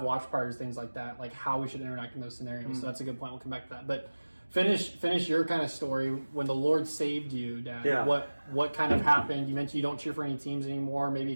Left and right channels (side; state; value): both; inverted; correlation -1.00